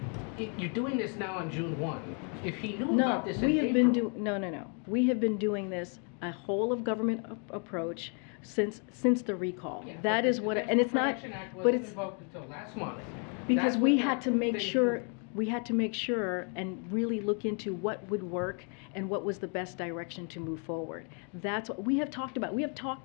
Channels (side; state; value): right; quieter; 39.7 dB